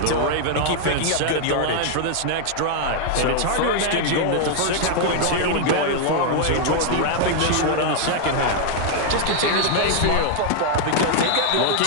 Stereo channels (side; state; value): both; different; correlation 0.00